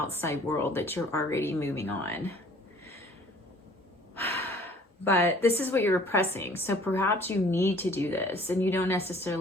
world that you're already moving on. But this is what you're repressing. So perhaps you need to do this, and you don't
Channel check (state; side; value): normal; both; correlation 0.53